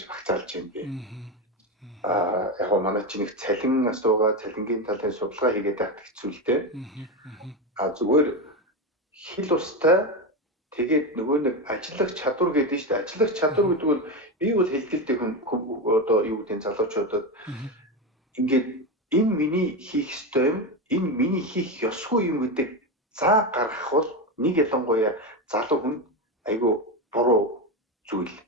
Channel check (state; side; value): normal; both; correlation 0.15